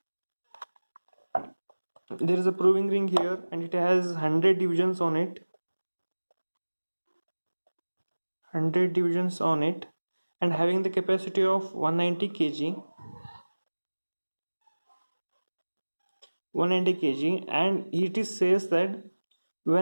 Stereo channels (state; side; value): inverted; both; correlation -1.00